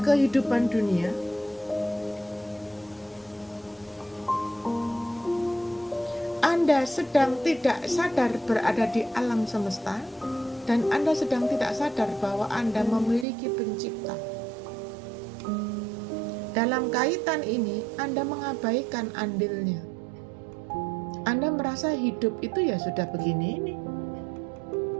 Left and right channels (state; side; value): drops out; left; at 13.2 s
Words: kehidupan dunia. Anda sedang tidak sadar berada di alam semesta, dan Anda sedang tidak sadar bahwa Anda memiliki pencipta. Dalam kaitan ini, Anda mengabaikan andilnya. Anda merasa hidup itu ya sudah begini ini.